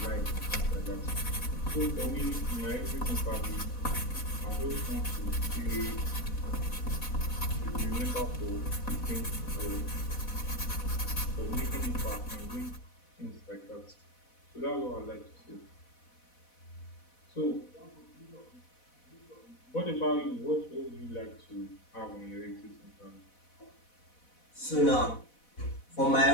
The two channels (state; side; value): late; right; 4.1 ms